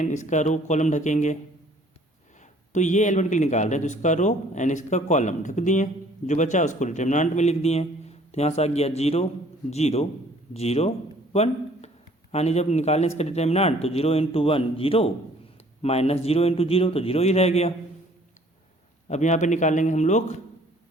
इसका रो कॉलम ढकेंगे। तो ये एलिमेंट के लिए निकाल रहे हैं, तो इसका रो एंड इसका कॉलम ढक दिए, जो बचा उसको डिटर्मिनेंट में लिख दिए। तो यहाँ से आ गया 0 0 0 1, यानी जब निकालें इसका डिटर्मिनेंट तो 0 × 1 0 माइनस 0 × 0, तो 0 ही रह गया। अब यहाँ पे निकालेंगे हम लोग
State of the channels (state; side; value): normal; both; correlation 0.57